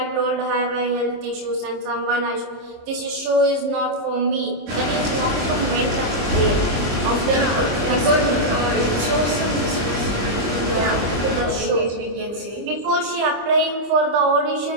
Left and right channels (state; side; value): late; left; 25 ms